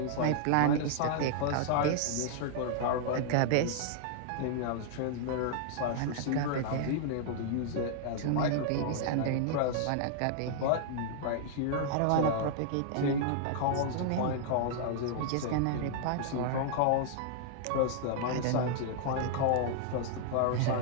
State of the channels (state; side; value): different; both; correlation -0.01